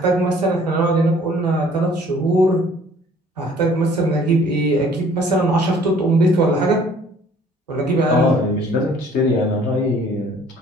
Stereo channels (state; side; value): normal; both; correlation 0.56